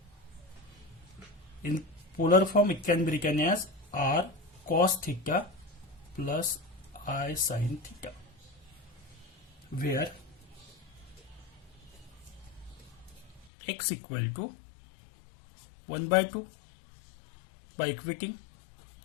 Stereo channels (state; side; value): drops out; right; at 13.5 s